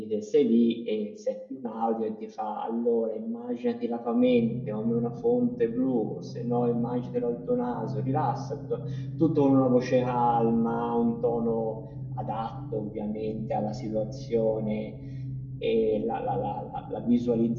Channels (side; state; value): both; identical; correlation 1.00